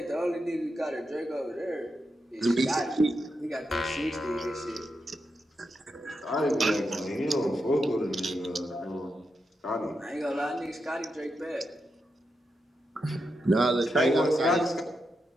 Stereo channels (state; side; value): normal; both; correlation 0.86